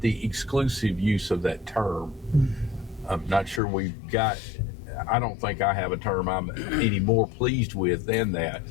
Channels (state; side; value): drops out; right; at 3.6 s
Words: exclusive use of that term. I'm not sure we've got. I don't think I have a term I'm any more pleased with than that.